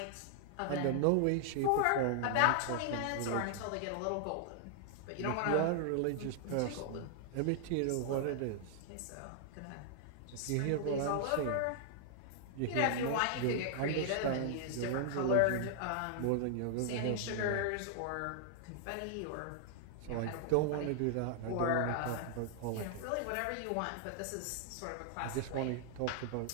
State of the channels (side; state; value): both; different; correlation -0.01